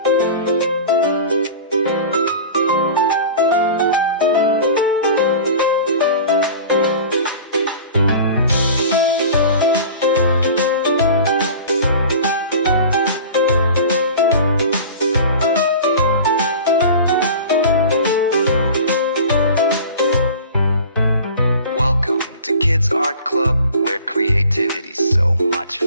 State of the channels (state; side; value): inverted; both; correlation -0.39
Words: Welcome to Kids Art Club, where creativity's so much